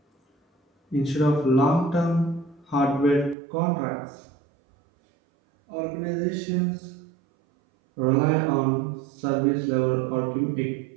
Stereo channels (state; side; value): drops out; left; at 3.4 s